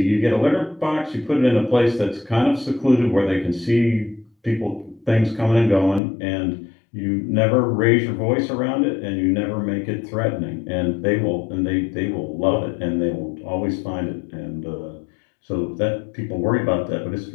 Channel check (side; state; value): right; drops out; at 6.0 s